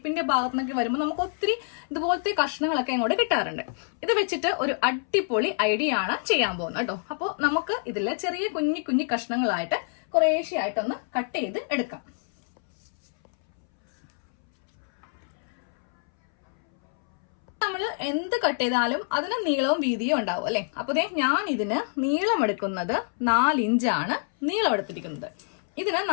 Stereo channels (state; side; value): silent; right; 61 dB below the other